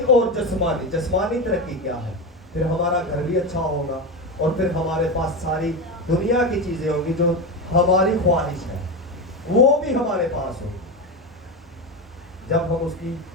और जिस्मानी तरक्की क्या है? फिर हमारा घर भी अच्छा होगा और फिर हमारे पास सारी दुनिया की चीजें होंगी जो हमारी ख्वाहिश है, वो भी हमारे पास होगी। जब हम उसकी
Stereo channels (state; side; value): normal; both; correlation 0.18